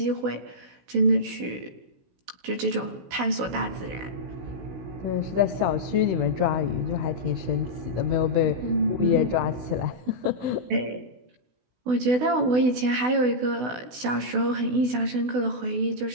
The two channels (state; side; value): late; left; 16 ms